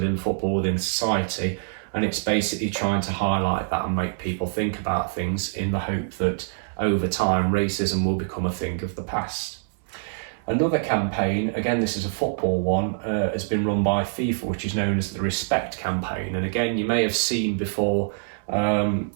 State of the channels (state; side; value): silent; left; 62 dB below the other